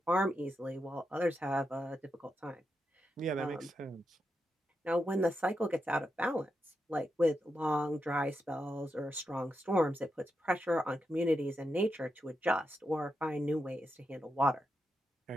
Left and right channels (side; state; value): both; normal; correlation 0.86